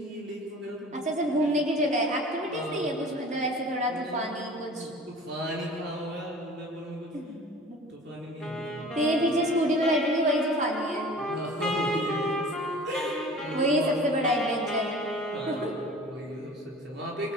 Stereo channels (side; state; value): both; normal; correlation 0.43